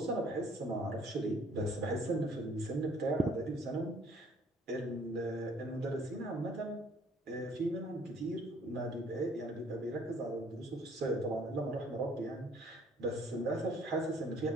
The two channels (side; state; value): both; normal; correlation 0.59